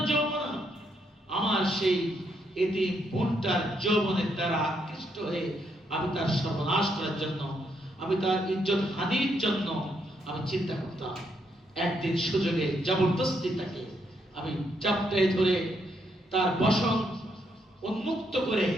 যৌবনা। আমার সেই এতিম বোনটার যৌবনের দ্বারা আকৃষ্ট হয়ে আমি তার সর্বনাশ করার জন্য, আমি তার ইজ্জত হানির জন্য আমি চিন্তা করতাম। একদিন সুযোগে জবরদস্তি তাকে আমি চাপটায় ধরে তার বসন উন্মুক্ত করে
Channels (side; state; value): both; normal; correlation 0.76